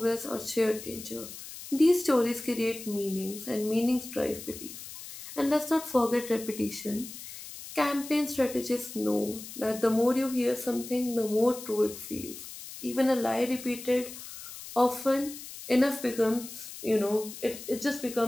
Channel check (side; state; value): left; noise; hiss, 12 dB below the sound